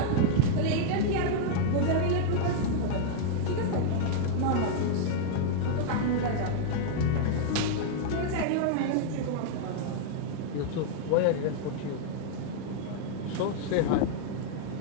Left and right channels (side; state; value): both; different; correlation -0.01